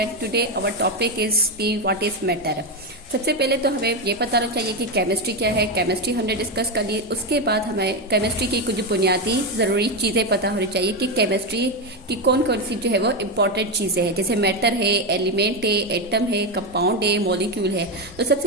Today our topic is the what is matter. सबसे पहले तो हमें ये पता होना चाहिए कि केमिस्ट्री क्या है। केमिस्ट्री हमने डिस्कस कर ली। उसके बाद हमें केमिस्ट्री की कुछ बुनियादी ज़रूरी चीज़ें पता होनी चाहिए कि केमिस्ट्री की कौन कौन सी जो है वो इम्पॉर्टेंट चीज़ें हैं, जैसे मैटर है, एलिमेंट है, एटम है, कंपाउंड है, मॉलिक्यूल है। तो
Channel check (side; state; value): both; normal; correlation 0.10